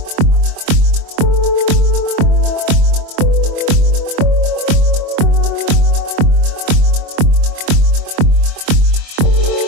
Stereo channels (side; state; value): left; late; 24 ms